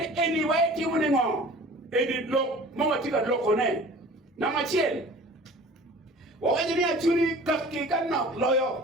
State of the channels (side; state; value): both; normal; correlation 0.44